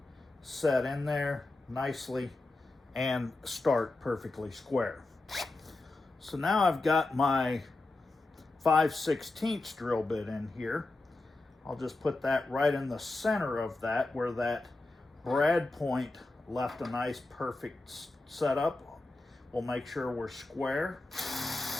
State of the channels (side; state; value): right; quieter; 3.1 dB